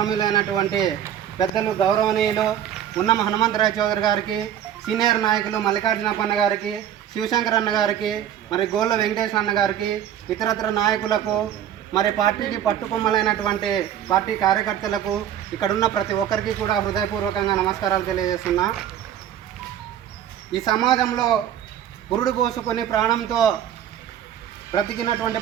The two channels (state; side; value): quieter; left; 10.3 dB